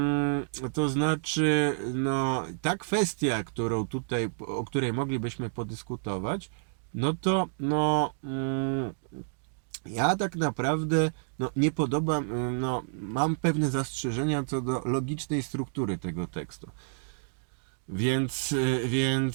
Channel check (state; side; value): silent; left; digital silence